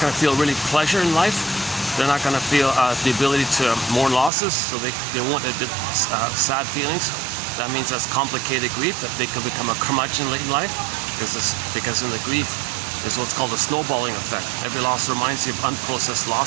to feel really pleasure in life. They're not going to feel the ability to mourn losses, so they won't admit sad feelings. That means that's complicated grief, that they can become a curmudgeon late in life, because in the grief is what's called a snowballing effect. Every loss reminds you of unprocessed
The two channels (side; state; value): left; drops out; at 4.3 s